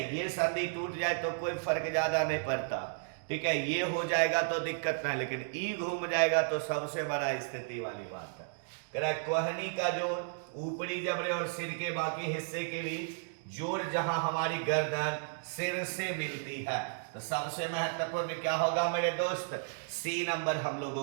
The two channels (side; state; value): left; silent; digital silence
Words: ये संधि टूट जाए तो कोई फर्क ज्यादा नहीं पड़ता। ठीक है, ये हो जाएगा तो दिक्कत नहीं, लेकिन ई घूम जाएगा तो सबसे बड़ा स्थिति वाली बात है। कह रहा है कोहनी का जोड़ ऊपरी जबड़े और सिर के बाकी हिस्से के बीच जोड़ जहां हमारी गर्दन सिर से मिलती है। तो सबसे महत्वपूर्ण क्या होगा मेरे दोस्त, सी नंबर हम